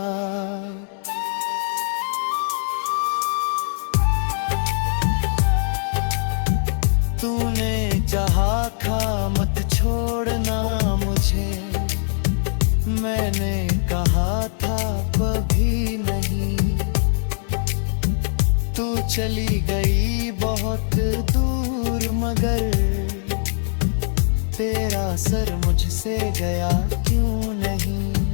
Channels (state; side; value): silent; right; 64 dB below the other